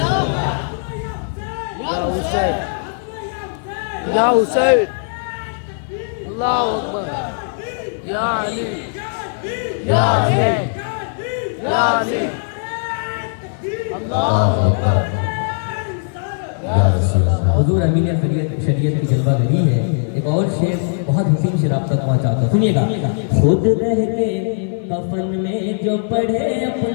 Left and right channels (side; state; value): right; silent; 56 dB below the other